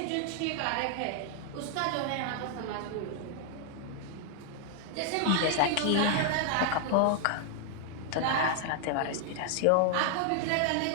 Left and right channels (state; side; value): different; both; correlation -0.01